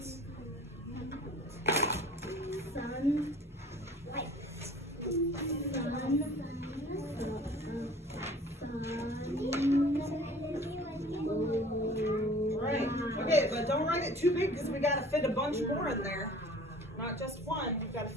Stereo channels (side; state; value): both; normal; correlation 0.48